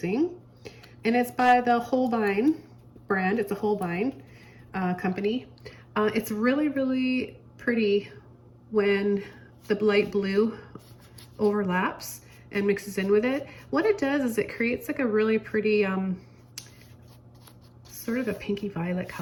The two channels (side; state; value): both; identical; correlation 1.00